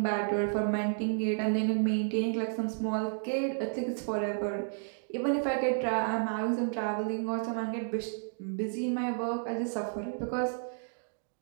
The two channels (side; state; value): left; silent; digital silence